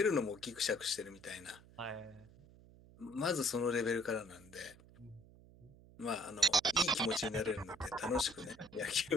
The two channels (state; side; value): noise; right; hum, 22 dB below the sound